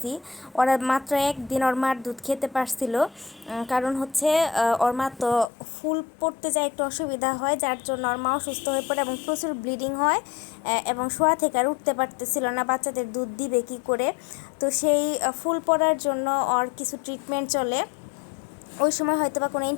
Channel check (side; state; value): right; drops out; at 5.5 s